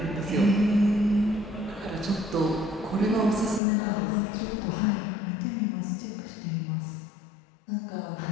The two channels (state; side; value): drops out; right; at 3.6 s